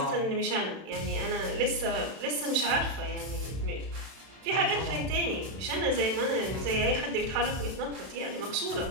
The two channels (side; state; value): left; late; 31 ms